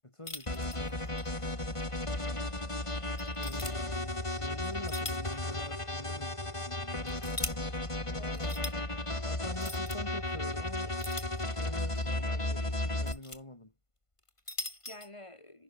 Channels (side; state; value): right; late; 1.5 ms